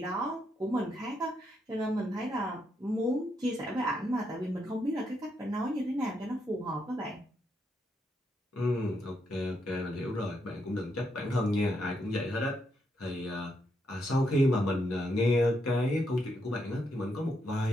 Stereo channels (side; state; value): both; normal; correlation 0.79